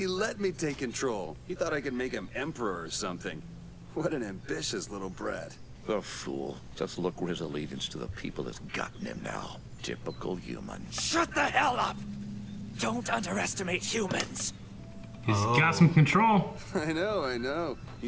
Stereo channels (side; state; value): both; identical; correlation 1.00